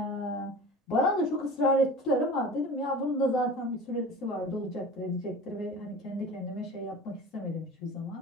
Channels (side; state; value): both; normal; correlation 0.37